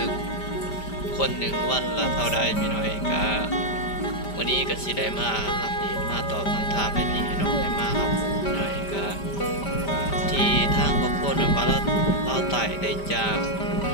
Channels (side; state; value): right; late; 5.1 ms